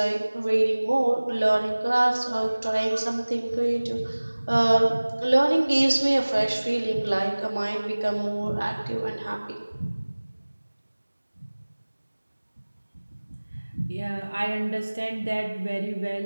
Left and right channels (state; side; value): inverted; both; correlation -1.00